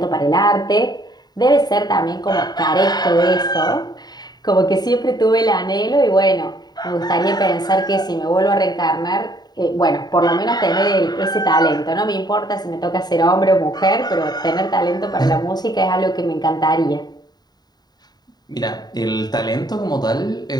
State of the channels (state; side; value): late; right; 0.20 ms